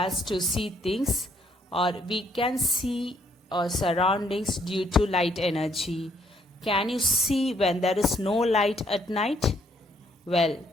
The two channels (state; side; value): normal; both; correlation 0.68